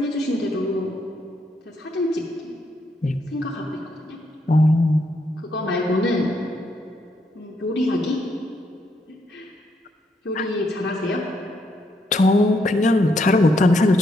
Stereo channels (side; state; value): both; normal; correlation 0.76